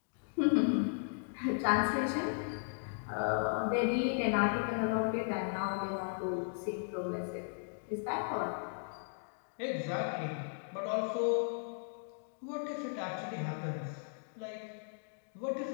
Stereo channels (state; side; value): silent; right; digital silence